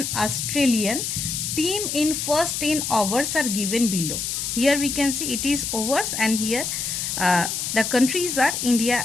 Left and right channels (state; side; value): noise; left; hiss, 2 dB below the sound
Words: Australian team in first 10 overs are given below. Here we can see it is overs, and here the countries are India